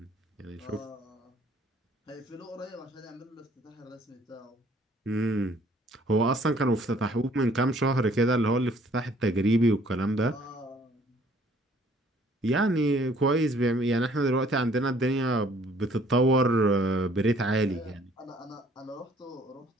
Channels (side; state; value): both; normal; correlation 0.59